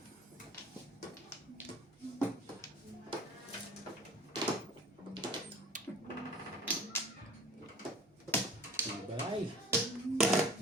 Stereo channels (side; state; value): both; normal; correlation 0.46